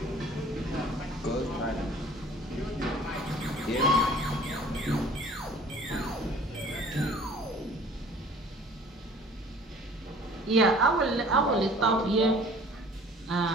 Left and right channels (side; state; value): both; normal; correlation 0.50